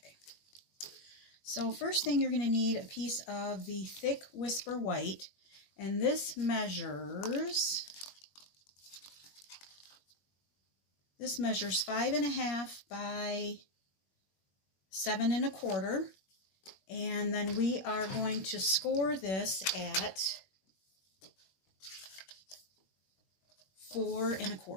So first thing, you're going to need a piece of the thick Whisper White, and this measures 5.5 by 7 1/4. And then we are going to score this at 4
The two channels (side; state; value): right; late; 21 ms